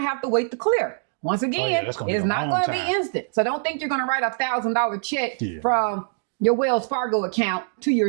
have to wait to clear. Once again, it's not going to be instant. So don't think you're going to write a $1,000 check from your Wells Fargo account to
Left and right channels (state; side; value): silent; left; digital silence